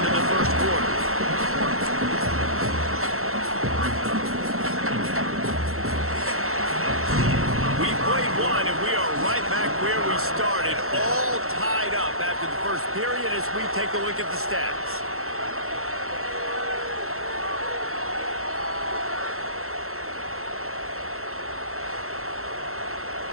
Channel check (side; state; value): left; late; 0.63 ms